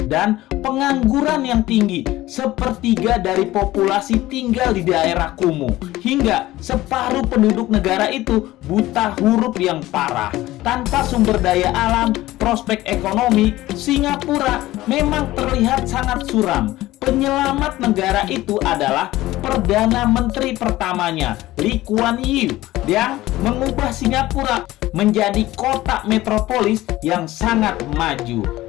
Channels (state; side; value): quieter; right; 16.7 dB